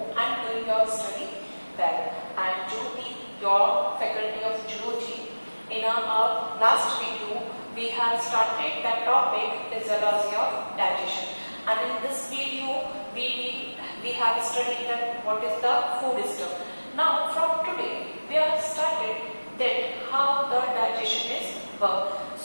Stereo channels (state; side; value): inverted; both; correlation -1.00